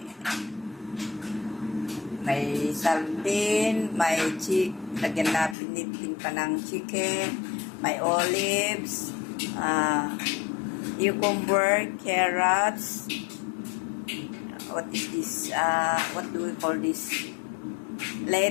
sardine, may lagyan na pinitin pa ng chicken, may olives, cucumber, carrots, what is this, what do we call this,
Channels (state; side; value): drops out; right; at 5.6 s